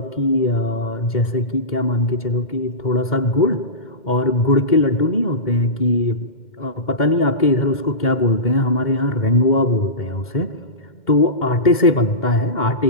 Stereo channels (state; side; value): late; right; 2.1 ms